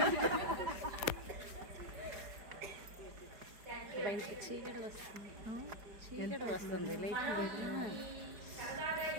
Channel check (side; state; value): left; late; 4.9 ms